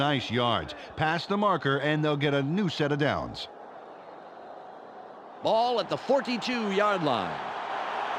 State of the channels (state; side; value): identical; both; correlation 1.00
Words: yards. Pass the marker, and they'll get a new set of downs. Ball at the 42-yard line.